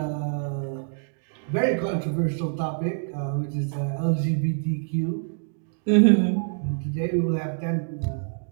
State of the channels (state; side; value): silent; left; digital silence